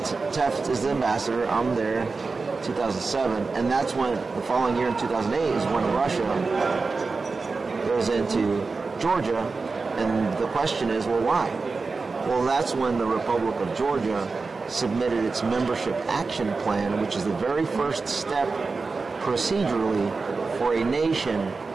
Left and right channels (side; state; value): left; quieter; 4.2 dB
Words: Teft is the ambassador, I'm there, 2007, and that's when, the following year in 2008 is when Russia goes into Georgia, and the question is, well, why? Well, that's when the Republic of Georgia submitted its membership action plan, which is the very first step procedurally for a nation